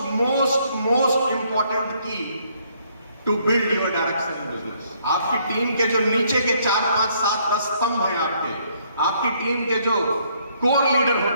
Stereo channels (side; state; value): both; inverted; correlation -0.68